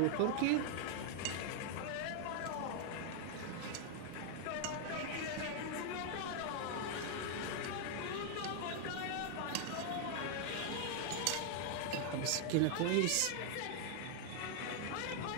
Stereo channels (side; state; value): both; different; correlation 0.00